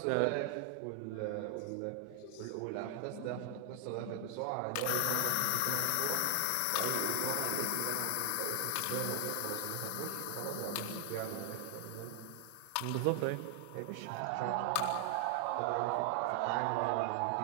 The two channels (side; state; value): both; different; correlation 0.00